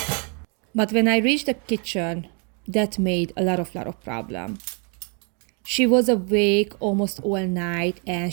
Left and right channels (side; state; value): left; quieter; 37.3 dB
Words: But when I reached the kitchen, that made a lot of problem. She was awake almost all night and